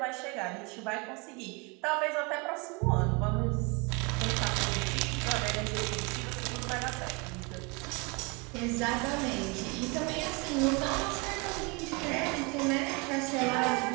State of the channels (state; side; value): quieter; left; 29.8 dB